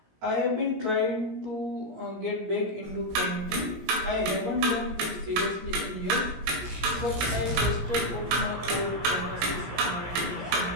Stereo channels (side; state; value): left; late; 17 ms